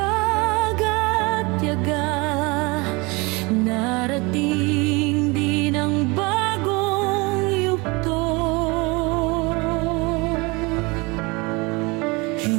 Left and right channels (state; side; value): quieter; left; 26.2 dB